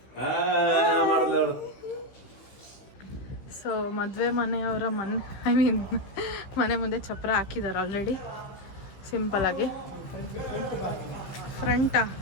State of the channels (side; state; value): right; late; 16 ms